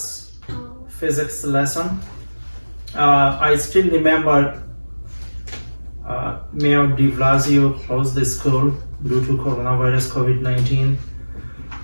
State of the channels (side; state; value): both; inverted; correlation -1.00